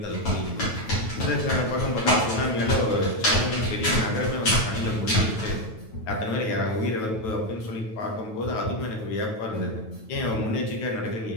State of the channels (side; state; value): right; late; 9.2 ms